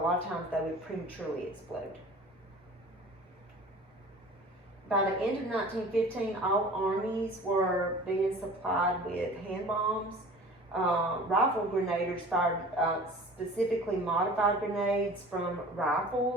lot of times they would prematurely explode. By the end of 1915, all armies were being supplied with hand bombs. Rifle grenadiers fired specifically modified grenades from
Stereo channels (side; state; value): both; normal; correlation 0.42